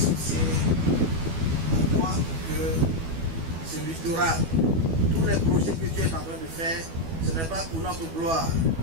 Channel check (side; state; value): left; late; 12 ms